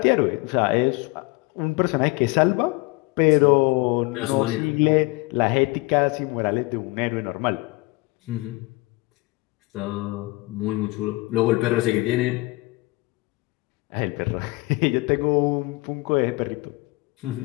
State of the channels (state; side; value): quieter; right; 23.6 dB